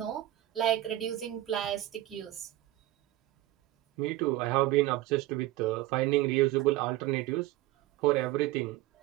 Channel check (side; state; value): left; quieter; 15.7 dB